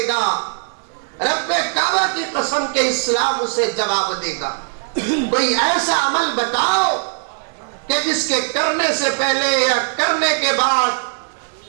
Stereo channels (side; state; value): left; silent; digital silence